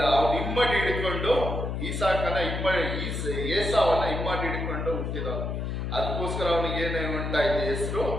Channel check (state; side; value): noise; left; hum, 3 dB below the sound